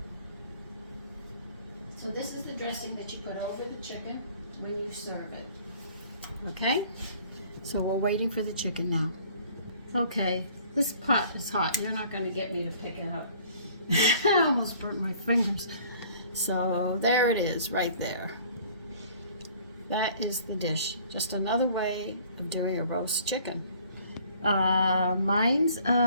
So this is the dressing that you put over the chicken when you serve it. Okay? So we're waiting for the chicken now. Okay, this pot is hot. You're not going to get me to pick it up. I almost burnt my fingers. So there it is, right there. That is the dish. Just another way of doing a roast chicken. Mine's,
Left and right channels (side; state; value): both; inverted; correlation -0.54